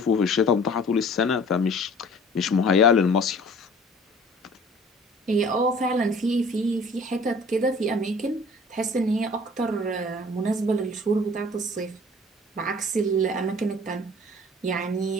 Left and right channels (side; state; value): both; normal; correlation 0.49